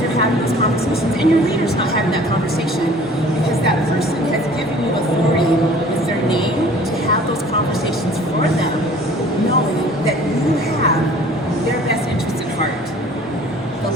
having those conversations, and your leader's not having that conversation because that person has given you authority with their name to have those conversations for them, knowing that you have their best interests at heart. The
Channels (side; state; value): both; normal; correlation 0.50